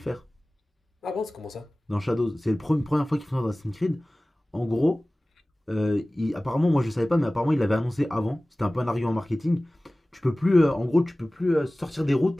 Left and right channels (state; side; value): normal; both; correlation 0.98